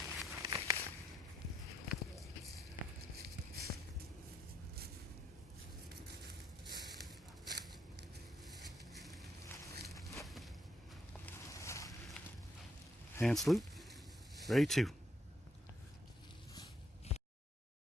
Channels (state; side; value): normal; both; correlation 0.74